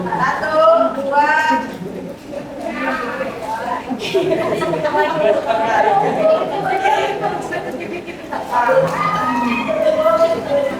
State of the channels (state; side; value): identical; both; correlation 1.00